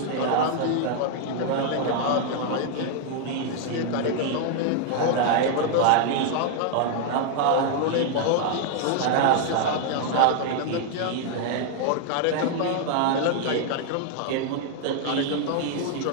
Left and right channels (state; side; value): different; both; correlation 0.00